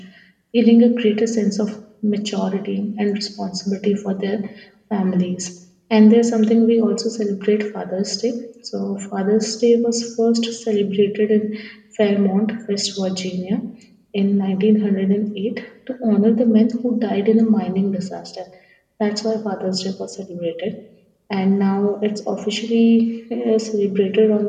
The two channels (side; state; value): both; identical; correlation 1.00